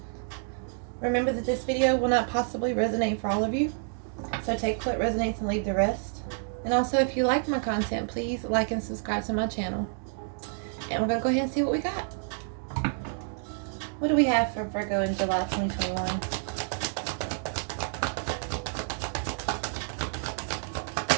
Remember that this video will not possibly resonate for all of you, so take what resonates and leave the rest. And also, if you like my content, please like and subscribe to my channel. And we're going to go ahead and see what we got. What do we have for Virgo in July 2021?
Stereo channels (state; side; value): silent; left; digital silence